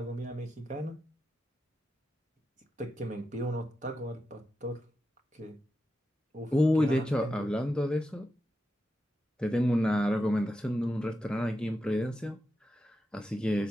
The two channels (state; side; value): normal; both; correlation 0.89